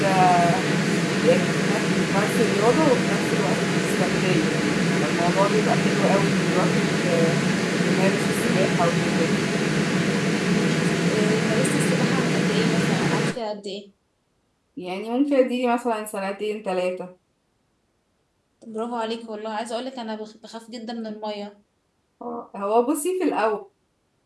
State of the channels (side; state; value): both; identical; correlation 1.00